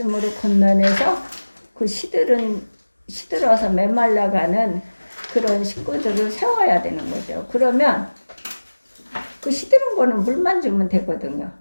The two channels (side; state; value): both; inverted; correlation -1.00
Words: 권면해서 그 시들어서 메말라가는 그런 식구들을 세워야 되는 거죠. 그러면 그 시드는 거는 물만 주면 되거든요.